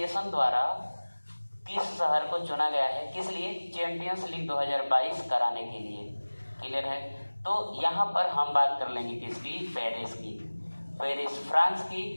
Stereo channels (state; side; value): inverted; both; correlation -1.00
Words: द्वारा किस शहर को चुना गया है? किस लिए? चैंपियंस लीग 2022 कराने के लिए। क्लियर है? तो यहाँ पर हम बात कर लेंगे किसकी? पेरिस की। पेरिस फ्रांस